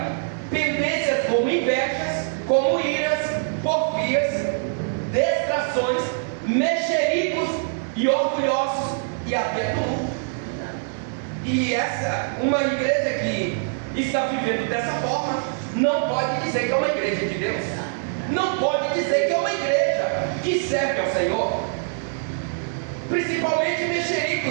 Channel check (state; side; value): silent; left; digital silence